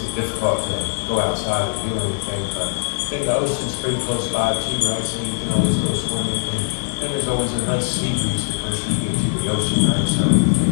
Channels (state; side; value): silent; right; digital silence